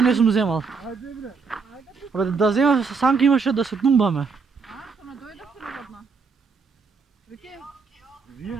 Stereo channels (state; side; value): quieter; left; 5.0 dB